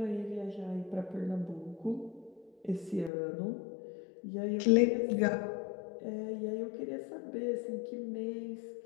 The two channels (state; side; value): drops out; right; at 3.1 s